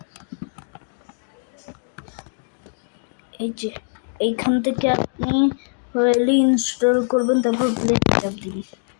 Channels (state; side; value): silent; right; digital silence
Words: এই যে এইখান থেকে আপনি হলে ইনস্টল করবেন, তারপর প্লে চাপ দিবেন।